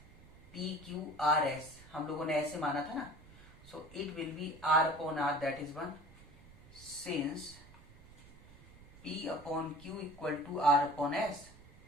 PQRS, हम लोगों ने ऐसे माना था ना, so it will be R upon R, that is 1. Since P upon Q equal to R upon S,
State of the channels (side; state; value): right; noise; rumble, 21 dB below the sound